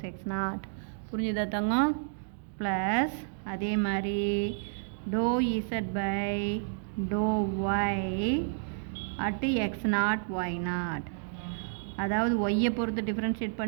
x0. புரிஞ்சுதா தங்கம்? ப்ளஸ் அதே மாதிரி ∂z/∂y at x0 y0, அதாவது ஒய்யை பொறுத்து டிஃப்ரென்ஷியேட்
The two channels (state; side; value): silent; left; digital silence